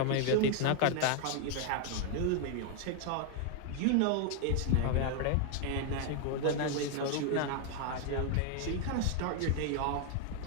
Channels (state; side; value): different; both; correlation 0.00